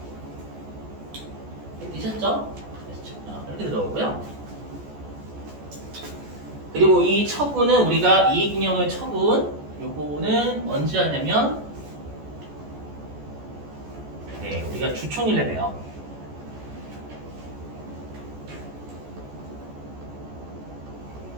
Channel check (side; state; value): left; late; 14 ms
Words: 되셨죠? 이렇게 들어오고요. 그리고 이 처분은 우리가 이익잉여금의 처분 요거는 언제 하냐면 우리가 주총일에 해요.